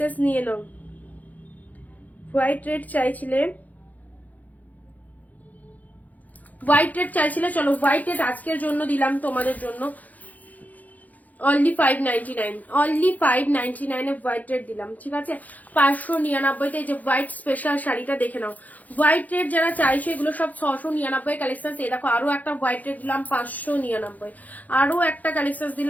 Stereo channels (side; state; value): right; late; 0.079 ms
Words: নিয়ে নাও। হোয়াইট রেড চাইছিলে, হোয়াইট রেড চাইছিলে, চলো হোয়াইট রেড আজকের জন্য দিলাম তোমাদের জন্য only 599, only 599 a white red দিলাম, ঠিক আছে। 599 যে হোয়াইট স্পেশাল শাড়িটা দেখে নাও। হোয়াইট রেড যারা চাইছো এগুলো সব 699 কালেকশন। এই দেখো আরো একটা হোয়াইট রেড দিলাম 599, আরো একটা কালেকশন